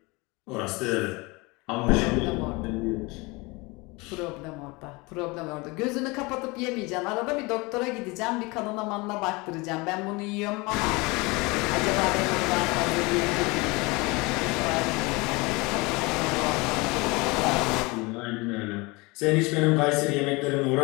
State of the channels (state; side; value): quieter; right; 25.4 dB